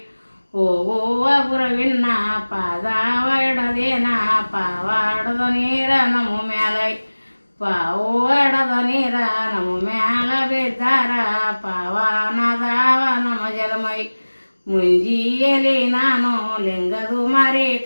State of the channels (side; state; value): both; inverted; correlation -1.00